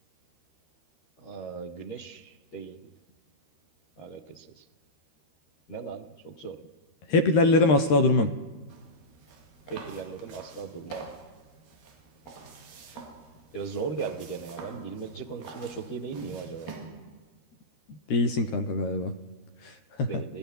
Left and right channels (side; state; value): right; late; 13 ms